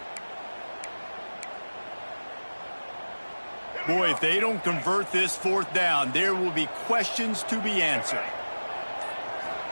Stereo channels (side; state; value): both; inverted; correlation -1.00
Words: Boy, if they don't convert this 4th down, there will be questions to be answered.